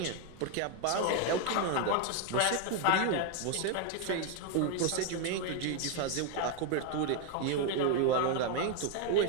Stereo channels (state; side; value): different; both; correlation 0.01